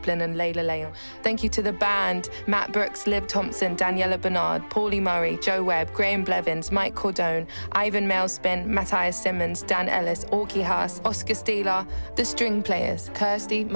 and Layla Leon. Thank you to the band, Matt Brooks, Liv Thompson, Daniela Bernard, Paulie Murray, Joe Webb, Graham Blevins, Mike Cordone, Ivan Mailspin, Matthias Simmons, Dan Ellis, Orky Haas, Oscar Steeler, The String Players, Kirsty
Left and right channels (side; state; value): both; inverted; correlation -1.00